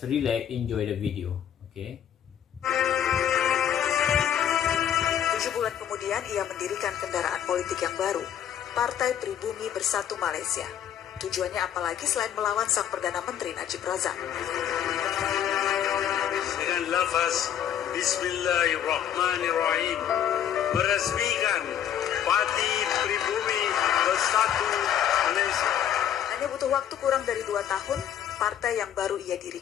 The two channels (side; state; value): right; quieter; 9.8 dB